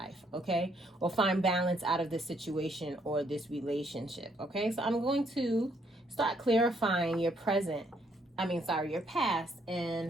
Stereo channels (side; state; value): both; normal; correlation 0.70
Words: okay? Or find balance out of this situation or this relationship, okay? So I'm going to start clarifying your your past,